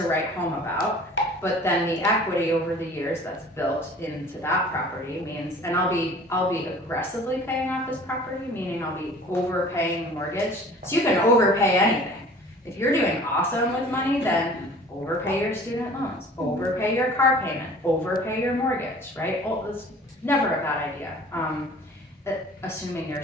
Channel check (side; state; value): both; normal; correlation 0.47